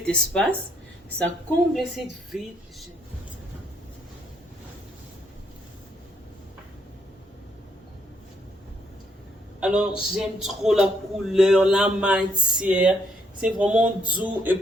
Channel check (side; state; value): both; normal; correlation 0.72